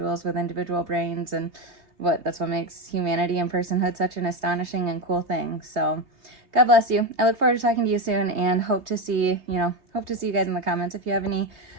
with individual brains, and that's what makes humanity and personhood such an astonishing and cool thing. So God bless you. I look forward to talking to you soon, and hope to see you guys in the comments. If you have any,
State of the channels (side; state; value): left; late; 3.2 ms